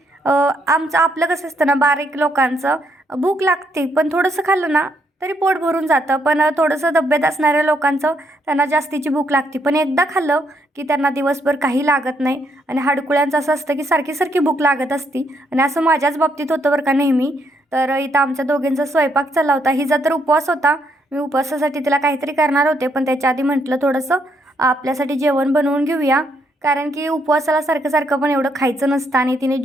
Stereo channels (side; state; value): both; normal; correlation 0.74